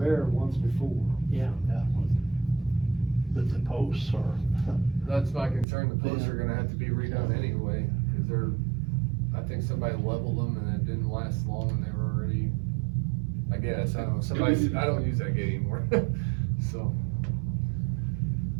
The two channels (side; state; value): left; drops out; at 5.7 s